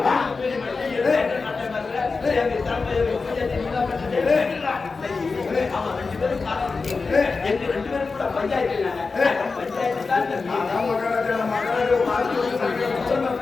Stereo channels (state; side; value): quieter; right; 4.3 dB